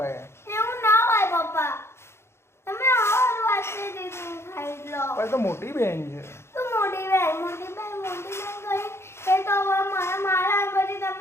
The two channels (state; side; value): late; right; 0.12 ms